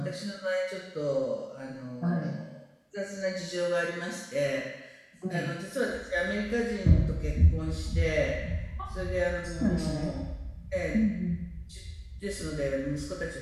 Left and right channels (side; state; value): both; identical; correlation 1.00